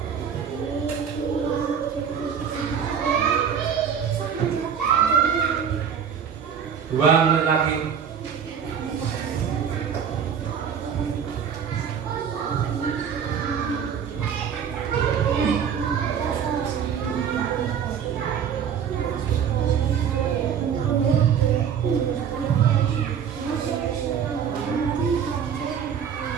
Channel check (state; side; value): quieter; left; 7.7 dB